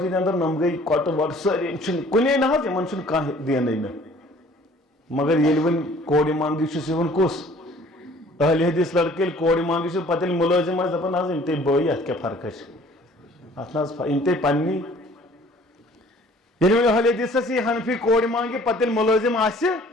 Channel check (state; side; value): normal; both; correlation 0.53